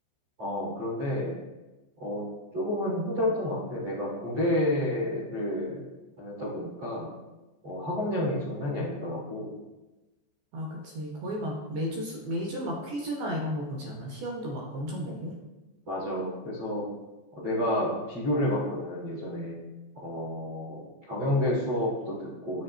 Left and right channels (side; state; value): left; late; 14 ms